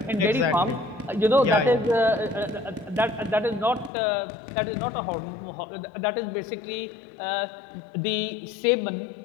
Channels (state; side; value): drops out; right; at 3.9 s